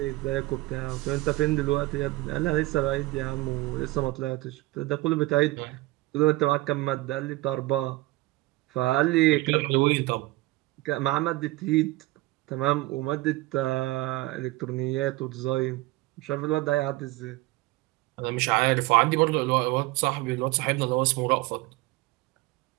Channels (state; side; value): quieter; left; 19.9 dB